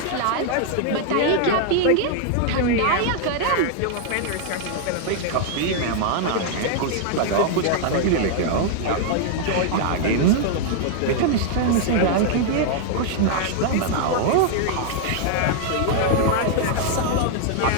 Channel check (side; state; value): both; different; correlation 0.00